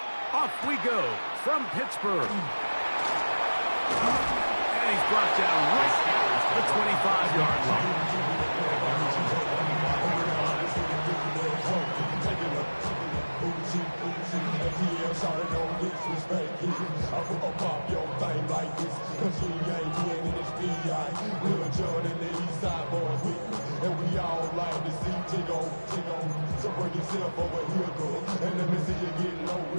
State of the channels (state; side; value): inverted; both; correlation -1.00